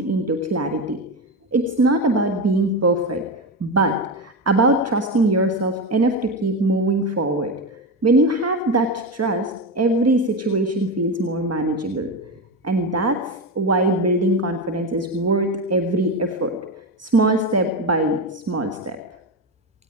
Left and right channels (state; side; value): normal; both; correlation 0.16